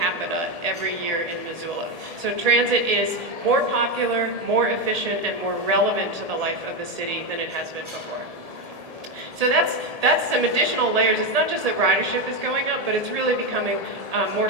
every year in Missoula. So transit is more popular, more efficient, and more relevant to the life of the city than it has been before. So that's some additional layers. It's not just that ridership is going up, but it's really becoming more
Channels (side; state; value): left; late; 1.8 ms